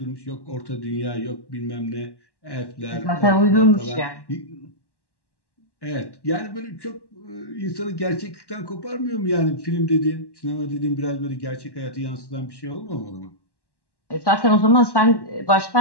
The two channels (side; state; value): right; late; 1.1 ms